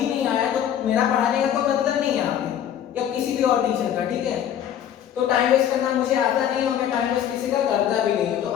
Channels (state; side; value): quieter; right; 10.0 dB